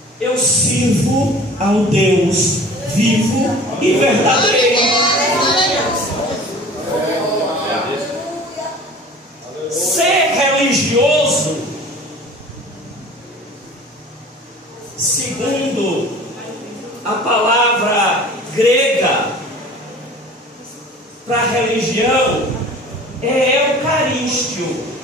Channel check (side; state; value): both; normal; correlation 0.44